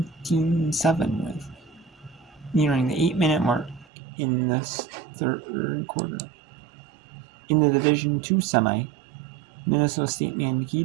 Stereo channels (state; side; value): drops out; left; at 3.9 s